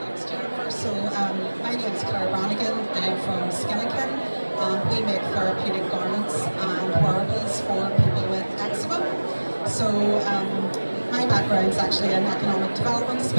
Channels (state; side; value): inverted; both; correlation -1.00